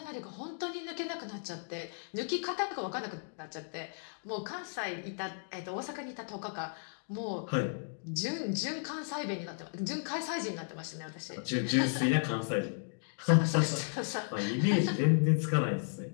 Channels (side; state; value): right; silent; digital silence